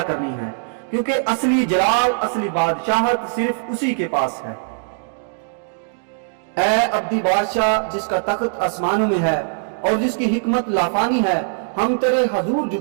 کرنی ہے، کیونکہ اصلی جلال، اصلی بادشاہت صرف اسی کے پاس ہے۔ اے ابدی بادشاہ جس کا تخت آسمانوں میں ہے اور جس کی حکمت لافانی ہے، ہم تیرے حضور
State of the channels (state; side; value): silent; left; digital silence